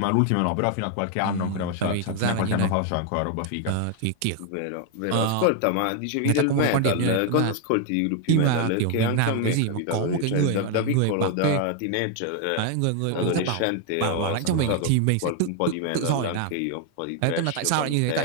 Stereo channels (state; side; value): different; both; correlation 0.01